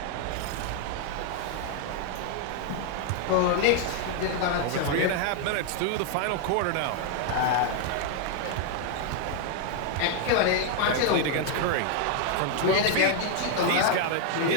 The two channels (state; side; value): different; both; correlation 0.00